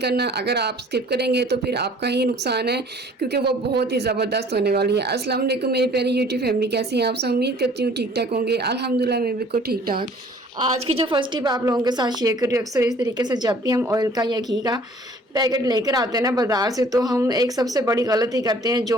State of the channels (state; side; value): normal; both; correlation 0.54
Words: अगर आप स्किप करेंगे तो फिर आपका ही नुकसान है, क्योंकि वो बहुत ही ज़बरदस्त होने वाली है। अस्सलाम वालेकुम मेरी प्यारी यूट्यूब फैमिली, कैसी हैं आप सब? उम्मीद करती हूँ ठीक ठाक होंगे। अल्हम्दुलिल्लाह मैं बिल्कुल ठीक ठाक। आज की जो फर्स्ट टिप आप लोगों के साथ शेयर कर रही हूँ, अक्सर इस तरीके से जब भी हम ऑयल का या घी का पैकेट लेकर आते हैं ना बाज़ार से, तो हम एक सबसे बड़ी गलती करते हैं